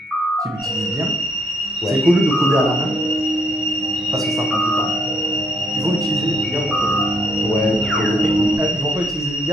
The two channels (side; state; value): both; normal; correlation 0.70